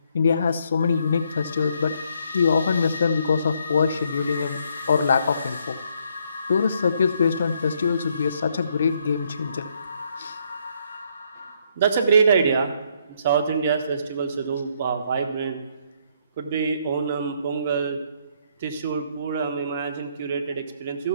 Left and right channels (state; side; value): inverted; both; correlation -0.71